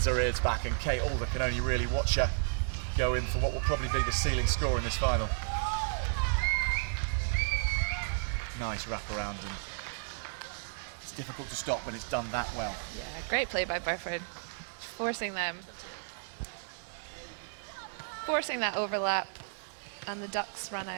her ears back, and Kate Alder can only really watch her go in for what will probably be the ceiling score in this final. Nice wraparound, and it's difficult to stop, but it's done that well. Yeah, great play by Burford, forcing that overlap, and the Ducks run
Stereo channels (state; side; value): silent; left; digital silence